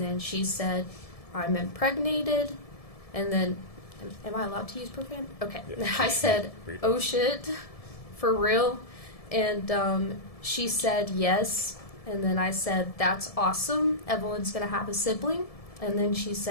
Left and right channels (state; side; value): late; right; 1.7 ms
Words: she said, "I'm impregnated." And then, am I allowed to use profanity? Okay. Yeah. I said, "Oh shit, for real?" And she said, "Yes." And then I said, "That's awesome. Evelyn's going to have a sibling." And then she